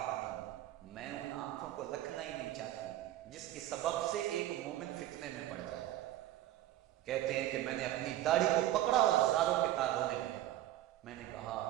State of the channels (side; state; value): left; quieter; 13.9 dB